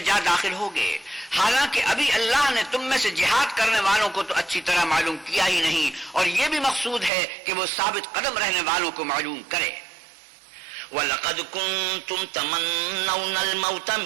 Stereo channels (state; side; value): drops out; left; at 7.1 s